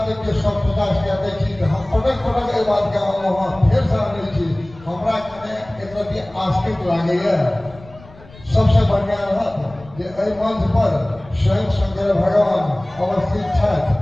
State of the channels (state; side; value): noise; left; rumble, 22 dB below the sound